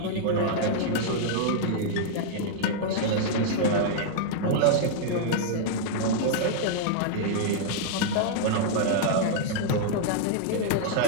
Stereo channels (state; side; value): different; both; correlation -0.01